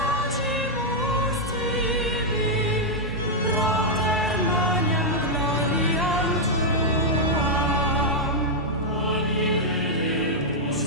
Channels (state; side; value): normal; both; correlation -0.04